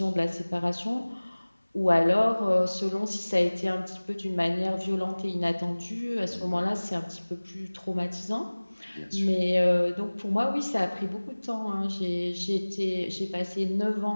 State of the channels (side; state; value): both; inverted; correlation -1.00